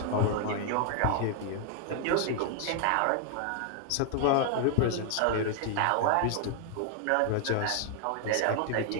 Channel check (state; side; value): different; both; correlation 0.00